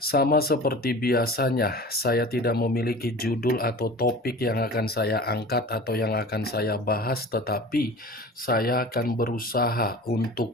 seperti biasanya, saya tidak memiliki judul atau topik yang akan saya angkat atau yang akan saya bahas, tetapi saya akan berusaha untuk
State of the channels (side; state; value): both; normal; correlation 0.38